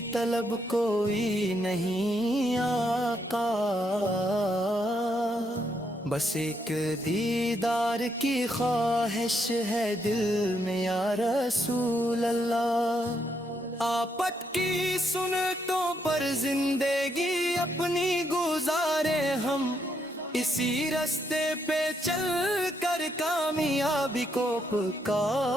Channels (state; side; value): normal; both; correlation 0.76